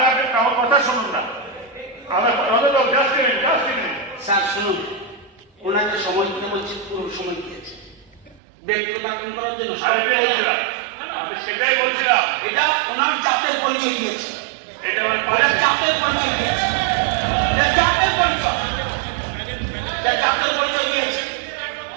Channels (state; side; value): drops out; left; at 8.4 s